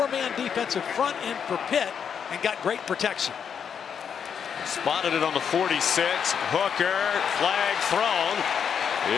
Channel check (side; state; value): right; quieter; 7.4 dB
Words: defensive front in for Pitt and got great protection. Spotted it on the 46. Hooker, flag thrown